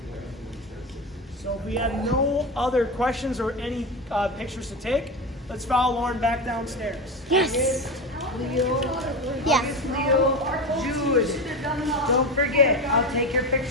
So if we have no other questions or any pictures to take, let's follow Lauren back downstairs. Yes. Yes. Leo, Jude, don't forget, I'll take your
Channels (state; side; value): normal; both; correlation 0.21